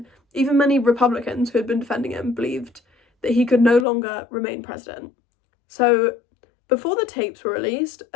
Even many Republicans who had been defending him believed that he could no longer remain president. So before the tapes were released,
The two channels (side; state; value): right; drops out; at 3.9 s